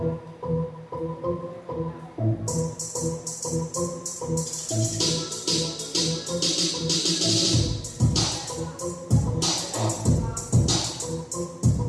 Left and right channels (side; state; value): both; identical; correlation 1.00